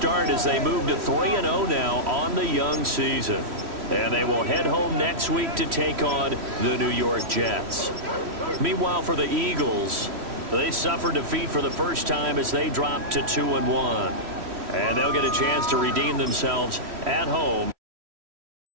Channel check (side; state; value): left; late; 3.1 ms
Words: as they move to 3-0 now on the young season. And they will head home next week to take on the New York Jets. Meanwhile, for the Eagles, they suffered defeat for the first time as they dropped to 2-1. And they'll get a chance to redeem themselves at home.